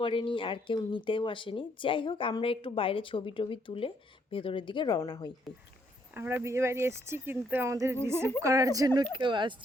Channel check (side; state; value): both; normal; correlation 0.70